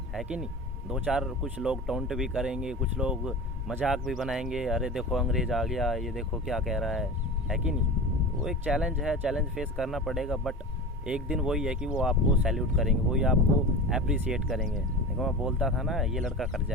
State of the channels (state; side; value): normal; both; correlation 0.31